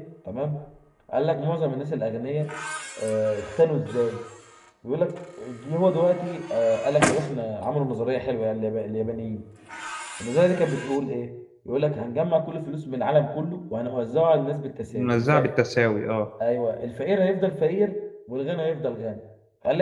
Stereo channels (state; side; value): identical; both; correlation 1.00